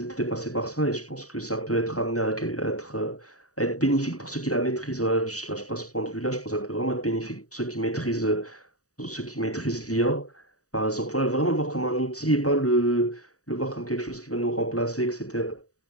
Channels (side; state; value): right; late; 0.66 ms